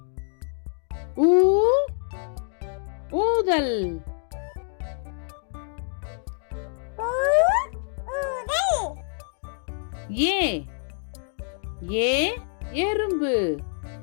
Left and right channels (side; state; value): right; silent; 61 dB below the other